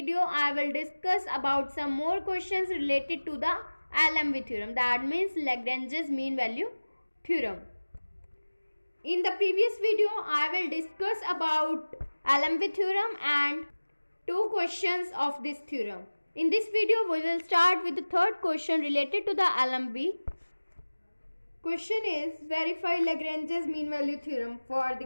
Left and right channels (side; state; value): both; inverted; correlation -1.00